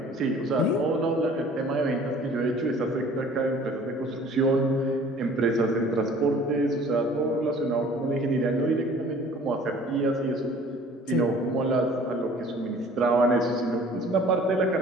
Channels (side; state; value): both; normal; correlation 0.51